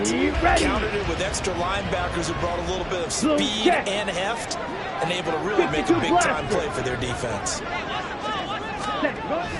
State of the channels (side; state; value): both; identical; correlation 1.00